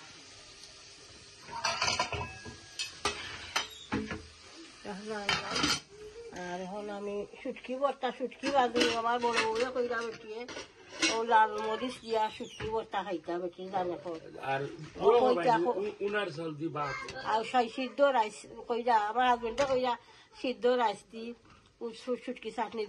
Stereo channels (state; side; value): identical; both; correlation 1.00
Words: আর এখন আমি শুটকি ভর্তা, শুটকি বাজু আমার বড় বউয়ে কইরা বেটিয়ে ও লাল মরিচ দিয়া শুটকি ভর্তা খাইতা বেটি জানে আর সিদ্ধ রাইস কইরা আমার হাজবেন্ডে কইরা সিদ্ধ রাইস দি শুটকি চাটনি